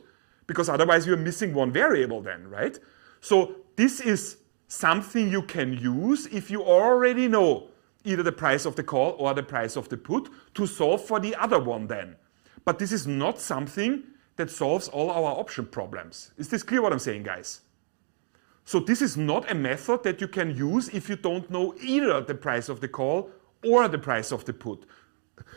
Because otherwise you're missing one variable then, right? So this is something you can use if you already know either the price of the call or the price of the put to solve for the other one then. But this is not something that solves all our option problems. Is this clear what I'm saying, guys? So this is not a method that you can use if you don't know either the price of the call or the price of the put.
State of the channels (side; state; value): left; silent; digital silence